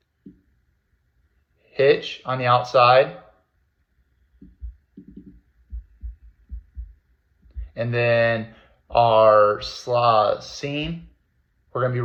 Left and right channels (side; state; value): both; identical; correlation 1.00